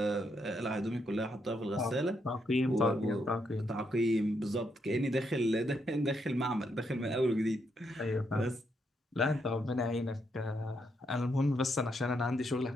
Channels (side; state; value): both; normal; correlation 0.78